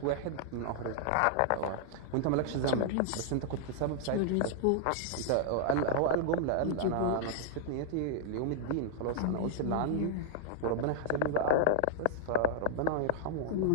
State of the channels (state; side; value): different; both; correlation -0.01